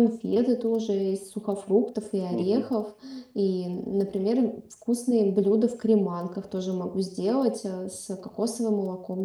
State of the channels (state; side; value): identical; both; correlation 1.00